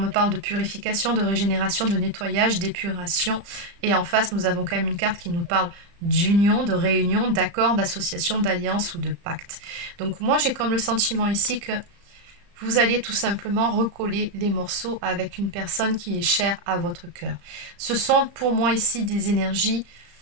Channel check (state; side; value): late; left; 35 ms